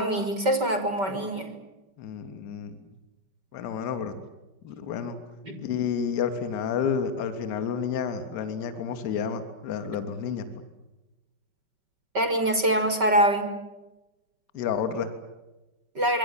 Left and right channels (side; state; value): left; late; 5.2 ms